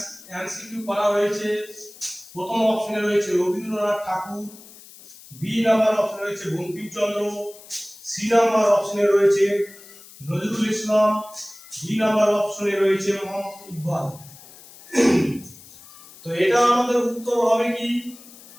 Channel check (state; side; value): noise; left; hiss, 20 dB below the sound